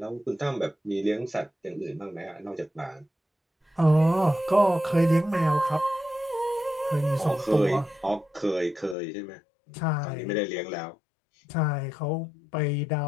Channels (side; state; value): right; drops out; at 9.0 s